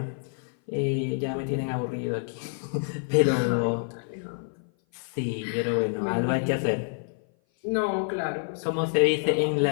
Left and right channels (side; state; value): right; silent; 57 dB below the other